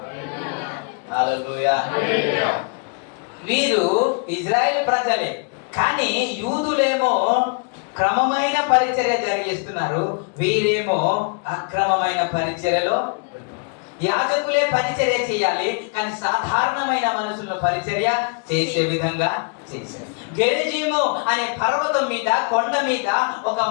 హల్లెలూయా. వీరు ఇజ్రాయెల్ ప్రజలే, కానీ యూదులేమో క్రమమైన పరిచర్య జరిగిస్తున్నారు, వీరేమో అక్రమమైన పరిచర్యలో. యాజకులే పరిచర్య చేయాలి, కానీ సాధారణమైన మనుషులను పరిచర్య చేసే విధంగా చేశారు. గెరిజీము అనే పర్వతం మీద, కొండ మీద ఒక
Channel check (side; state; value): right; quieter; 37.0 dB